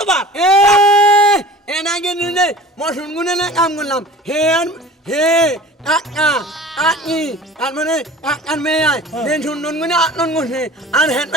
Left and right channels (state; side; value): normal; both; correlation 0.41